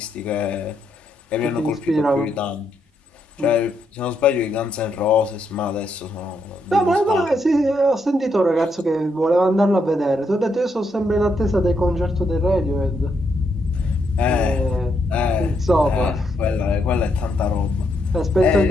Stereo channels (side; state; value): both; normal; correlation 0.78